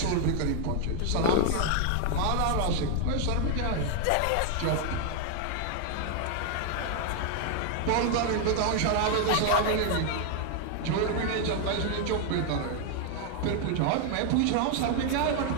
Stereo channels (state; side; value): different; both; correlation 0.00